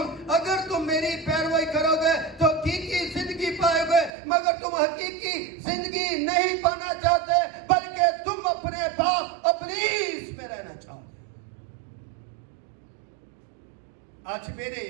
اگر تم میری پیروی کرو گے تو حقیقی زندگی پائے گے. مگر تم حقیقی زندگی نہیں پانا چاہتے, بلکہ تم اپنے باپ ابلیس میں رہنا چاہتے. آج میرے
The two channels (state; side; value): drops out; left; at 4.1 s